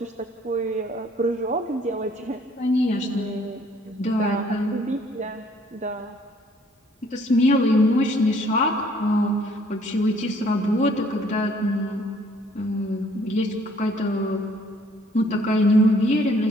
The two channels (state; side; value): normal; both; correlation 0.61